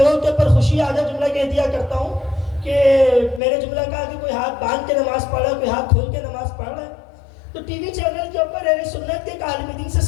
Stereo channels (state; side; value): drops out; right; at 3.4 s